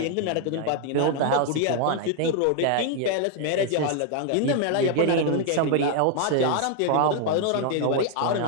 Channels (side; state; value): both; different; correlation 0.00